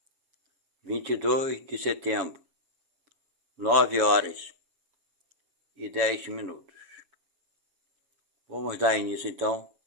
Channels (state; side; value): late; left; 7.2 ms